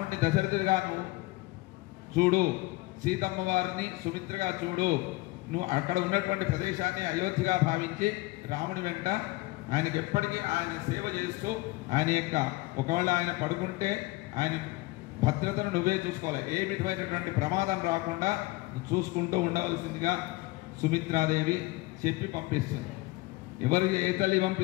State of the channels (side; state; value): right; quieter; 21.3 dB